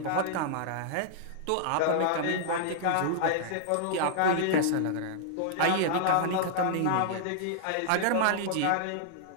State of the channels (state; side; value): different; both; correlation -0.01